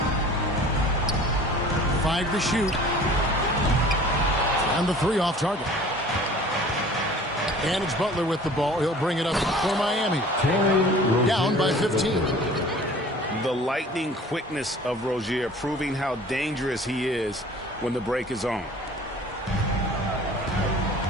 5 to shoot. And the 3 off target. And it's Butler with the ball. He'll bring it up for Miami. Down by 15. The lightning quickness of Rozier proving how dangerous he is when the break is on.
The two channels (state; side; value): normal; both; correlation 0.46